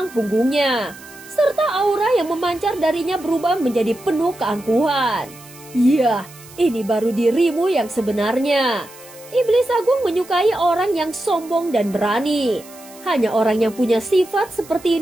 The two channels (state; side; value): noise; right; hiss, 21 dB below the sound